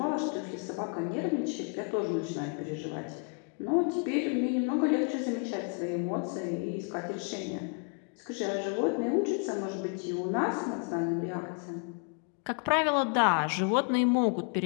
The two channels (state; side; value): quieter; right; 38.2 dB